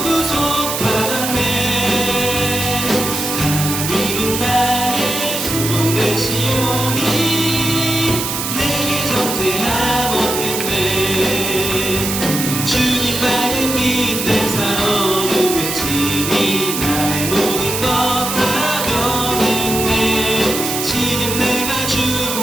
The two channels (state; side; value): noise; right; hiss, 3 dB below the sound